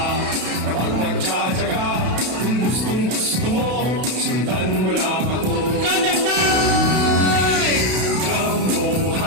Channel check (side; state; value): left; late; 32 ms